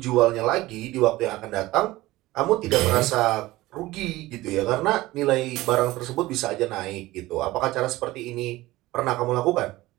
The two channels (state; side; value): quieter; left; 18.2 dB